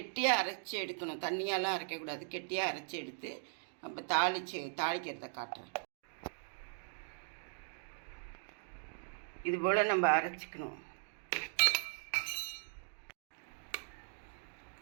அரைச்சி எடுக்கணும். தண்ணியாலாம் அரைக்கக்கூடாது. கெட்டியாக அரைச்சி எடுத்து நம்ம தாளிக்கிறத காட்டுறேன். இது போல் நம்ம அரைச்சிக்கணும்.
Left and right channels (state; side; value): silent; left; digital silence